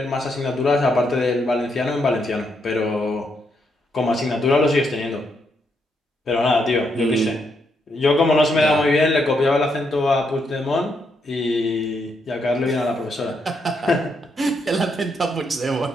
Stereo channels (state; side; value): normal; both; correlation 0.78